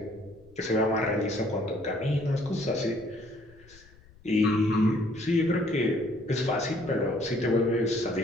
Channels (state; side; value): noise; left; rumble, 25 dB below the sound